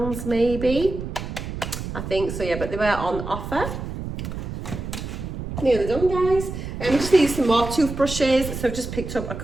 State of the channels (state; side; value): noise; right; rumble, 7 dB below the sound